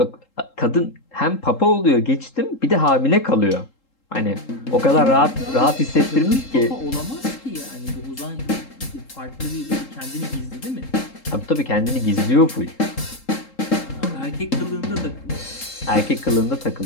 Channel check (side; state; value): right; late; 3.8 ms